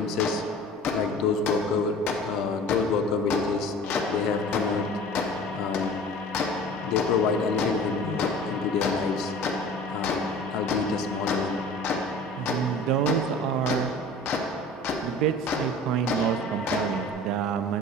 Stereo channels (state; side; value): normal; both; correlation 0.42